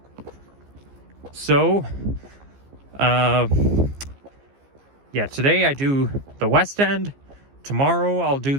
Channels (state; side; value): late; left; 15 ms